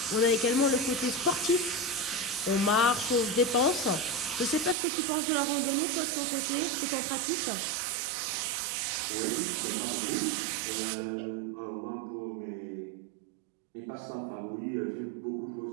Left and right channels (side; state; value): left; drops out; at 4.8 s